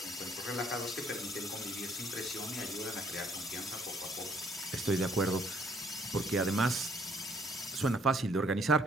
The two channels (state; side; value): normal; both; correlation 0.65